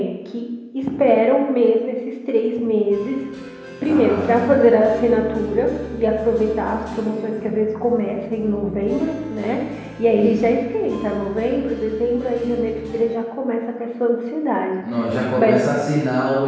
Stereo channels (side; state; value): both; identical; correlation 1.00